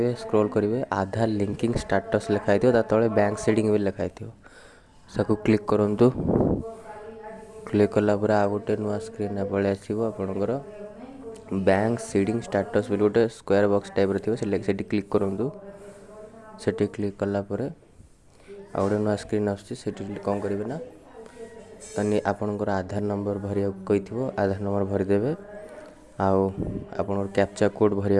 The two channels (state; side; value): identical; both; correlation 1.00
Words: स्क्रॉल करेंगे आधार लिंकिंग स्टेटस लिखाई तले बैंक सेटिंग भी लिखाई सबको क्लिक करूँ। क्लिक कलापर आ गोटे नुआ स्क्रीन पलि आसो आपणकर बैंक सीडिंग स्टेटस भी गोटे स्क्वायर बॉक्स टाइप थी क्लिक करूँ। से क्लिक कलापर आ गोटे नुआ स्क्रीन आसी कौन करेंगे ना तनी आपणकर आधार नंबर भरिया कही आधार नंबर भरीदे आउ कैप्चा कोड